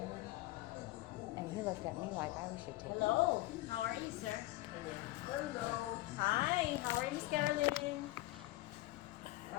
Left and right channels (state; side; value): quieter; right; 18.6 dB